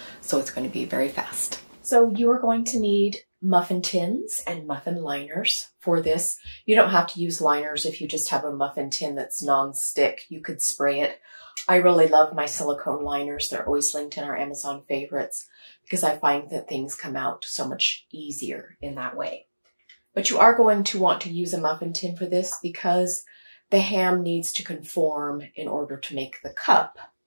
So it's going to be very fast. So you are going to need muffin tins and muffin liners for this. You don't have to use liners if you just have a muffin tin that's non-stick. You could spray it. I really love my silicone liners. They're always linked in our Amazon favorites because I find that things come out so much easier in that way. But you are going to want to use a muffin tin for this because the ham needs to conform in order to make the cup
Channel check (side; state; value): both; inverted; correlation -1.00